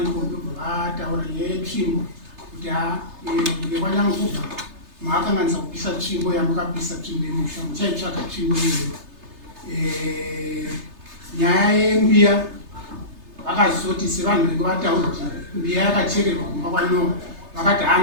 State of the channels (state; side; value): late; left; 3.3 ms